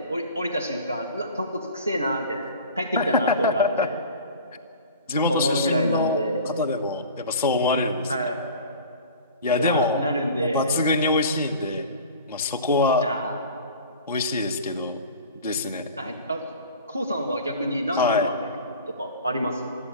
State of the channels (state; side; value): inverted; both; correlation -0.39